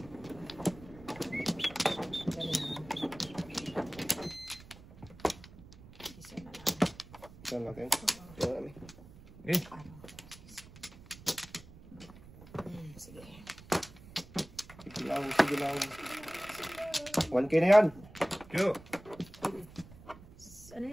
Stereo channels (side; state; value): right; noise; rumble, 19 dB below the sound